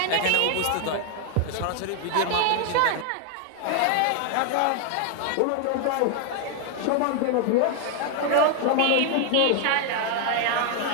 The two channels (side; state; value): both; different; correlation 0.00